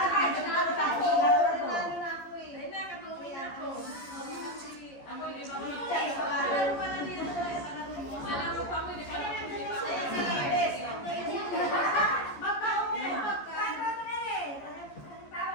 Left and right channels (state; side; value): late; right; 14 ms